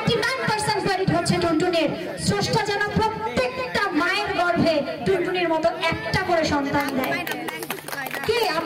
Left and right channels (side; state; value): both; identical; correlation 1.00